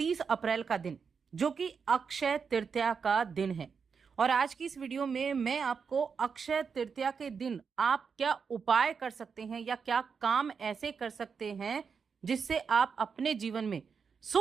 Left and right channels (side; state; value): left; quieter; 5.9 dB